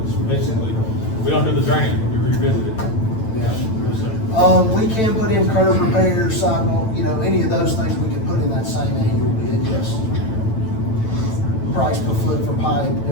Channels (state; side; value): late; right; 9.1 ms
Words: it's basically, we don't do the drainage, but we revisit it. We can put in curb repairs, sidewalk, any of those things we can put in that same annual bid, yes. Price per foot for pipe,